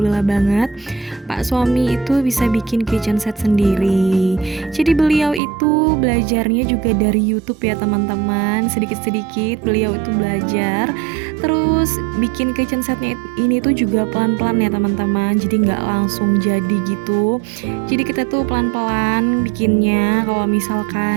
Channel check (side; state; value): left; drops out; at 5.4 s